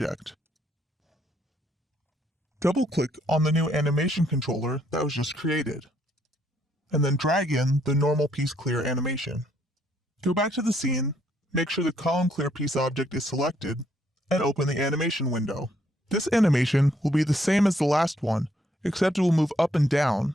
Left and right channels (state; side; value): normal; both; correlation 0.70